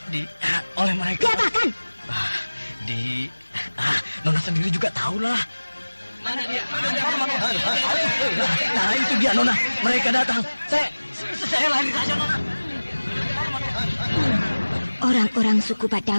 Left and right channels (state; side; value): inverted; both; correlation -1.00